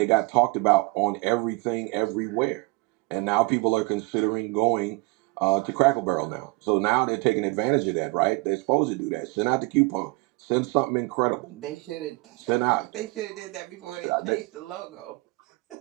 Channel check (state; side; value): quieter; left; 25.4 dB